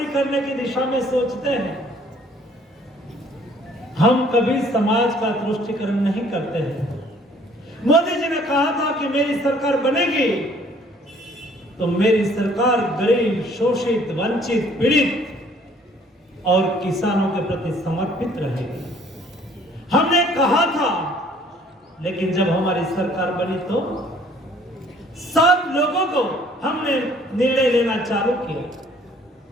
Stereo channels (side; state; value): both; normal; correlation 0.59